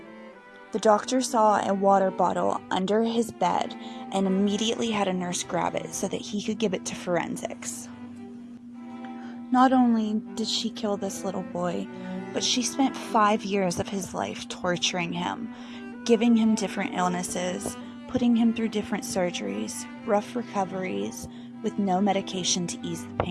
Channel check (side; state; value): both; identical; correlation 1.00